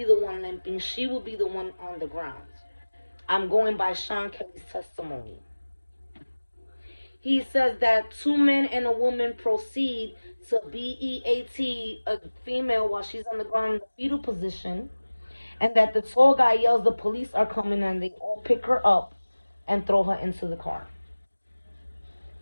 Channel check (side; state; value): both; inverted; correlation -1.00